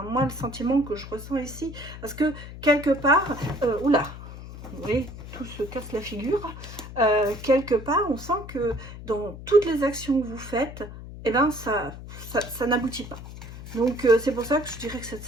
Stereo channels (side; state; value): left; noise; hum, 13 dB below the sound